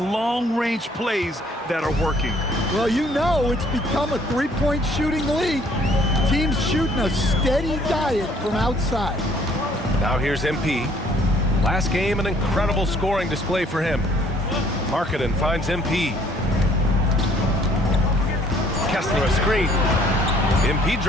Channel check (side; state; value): both; normal; correlation 0.61